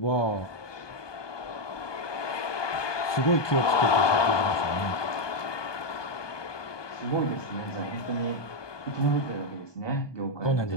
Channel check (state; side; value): late; right; 1.2 ms